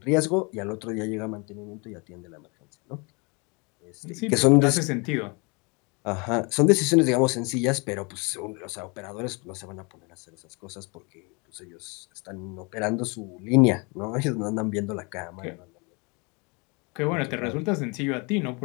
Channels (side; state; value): right; quieter; 30.4 dB